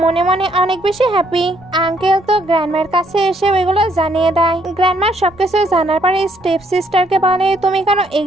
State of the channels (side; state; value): both; normal; correlation 0.69